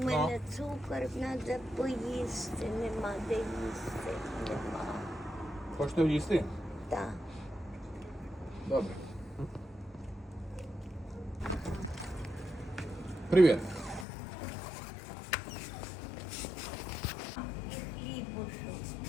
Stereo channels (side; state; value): right; drops out; at 14.1 s